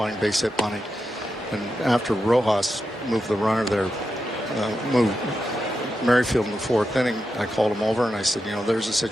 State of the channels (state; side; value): normal; both; correlation 0.88